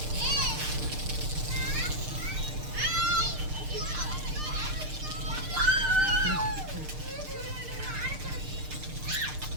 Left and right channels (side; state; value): left; late; 6.6 ms